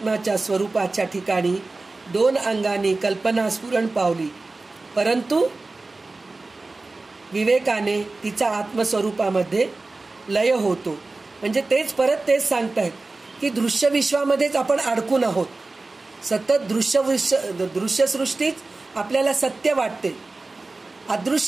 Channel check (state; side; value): quieter; left; 3.4 dB